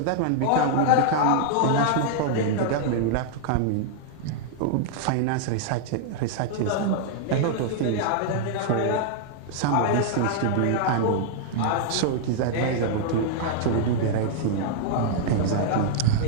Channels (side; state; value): both; different; correlation -0.01